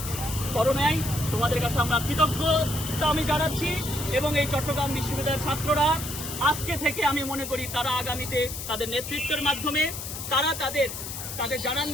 করো নাই। তোমাদের কাছে আমরা কৃতজ্ঞতা আমি জানাচ্ছি। এবং এই চট্টগ্রাম বিশ্ববিদ্যালয়ের ছাত্ররা আজকে থেকে আমি মনে করি তারা আগামীতে তাদের নেতৃত্বের মাধ্যমে তারা তাদের জানান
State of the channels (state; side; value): noise; left; hiss, 8 dB below the sound